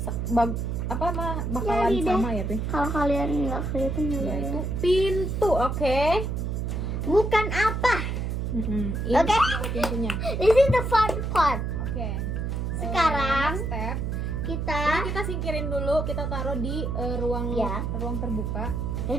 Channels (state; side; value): noise; right; hum, 2 dB below the sound